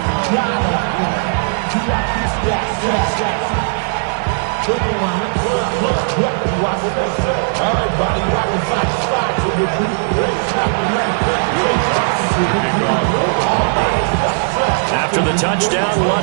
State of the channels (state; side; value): silent; left; digital silence